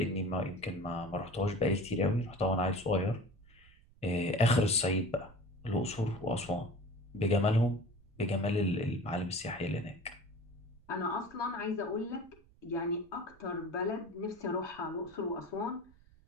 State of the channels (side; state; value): right; noise; rumble, 26 dB below the sound